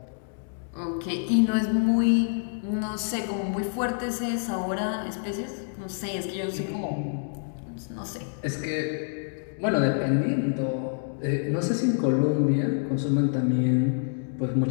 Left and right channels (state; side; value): silent; right; digital silence